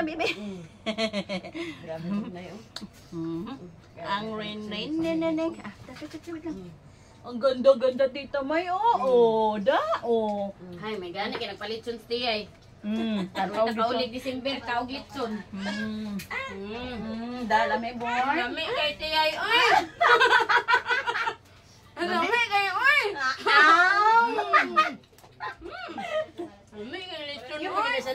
bibi. Ang rain neneng. Ang ganda dito may Hay, may gani kay nagpalit sun stay ay. Tanaw Nakaulig December kaog litson. Dala may boy. Lami kay tiyay oy. Lami kay oy. Lami kay litson Yung oy. mga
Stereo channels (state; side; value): identical; both; correlation 1.00